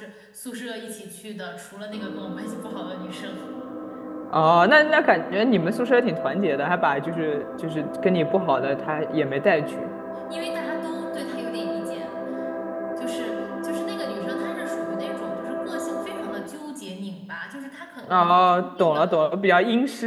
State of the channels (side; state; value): both; identical; correlation 1.00